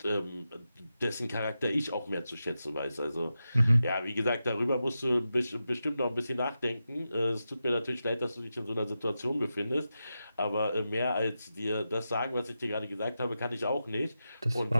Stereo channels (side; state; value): both; inverted; correlation -0.90